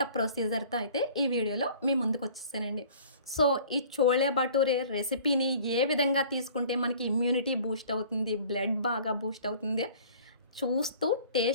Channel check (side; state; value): both; inverted; correlation -0.49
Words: ప్రొసీజర్‌తో అయితే ఈ వీడియోలో మీ ముందుకొచ్చేసానండి. సో, ఈ చోలే భటూరే రెసిపీని ఏ విధంగా తీసుకుంటే మనకి ఇమ్యూనిటీ బూస్ట్ అవుతుంది, బ్లడ్ బాగా బూస్ట్ అవుతుంది చూస్తూ